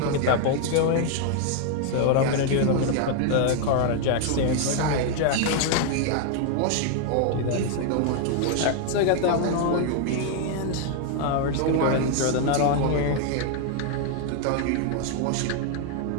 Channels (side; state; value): both; different; correlation 0.00